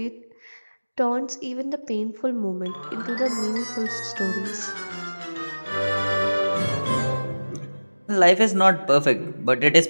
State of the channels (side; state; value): both; inverted; correlation -1.00